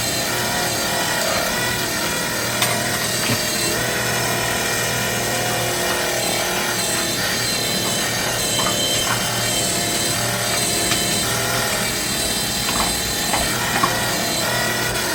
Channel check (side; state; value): both; identical; correlation 1.00